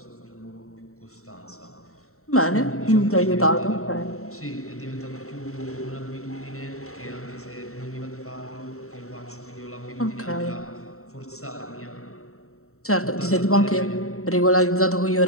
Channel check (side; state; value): right; late; 0.64 ms